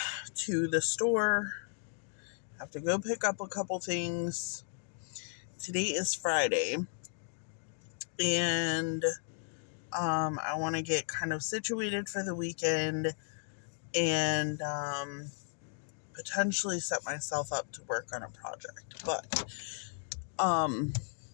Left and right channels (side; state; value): right; silent; 55 dB below the other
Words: to the store. Have to go pick up a couple things. Today is Friday, and I want to get kind of situated for the weekend and potentially set myself up to work on a project. But, um,